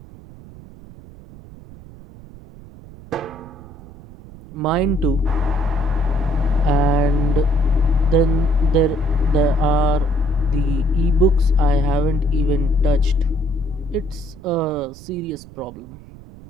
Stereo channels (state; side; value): noise; right; rumble, 19 dB below the sound